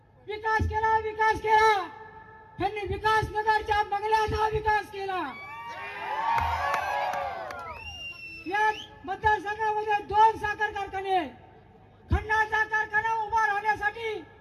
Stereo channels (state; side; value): identical; both; correlation 1.00